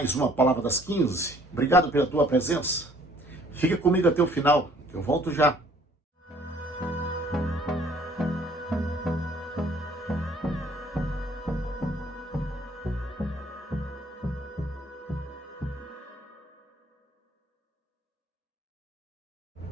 uma Palavra das 15. Obrigado pela tua presença. Fica comigo até o final, eu volto já.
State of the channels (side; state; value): both; normal; correlation 0.58